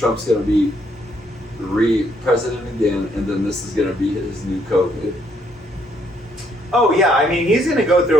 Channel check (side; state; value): both; normal; correlation 0.70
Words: going to be president again, and then this is going to be his new COVID. Oh yeah, I mean he's gonna go through